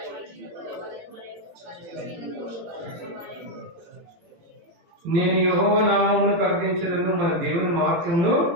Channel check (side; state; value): left; late; 18 ms